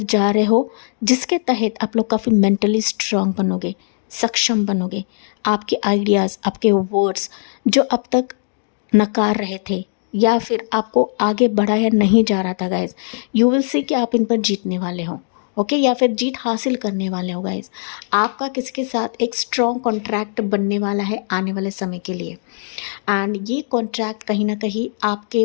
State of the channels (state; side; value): silent; right; digital silence